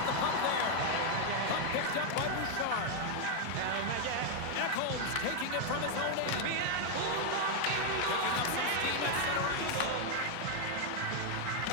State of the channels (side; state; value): both; different; correlation 0.01